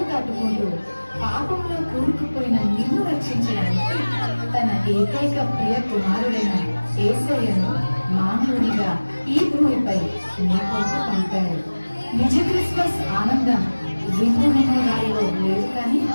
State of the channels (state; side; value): inverted; both; correlation -1.00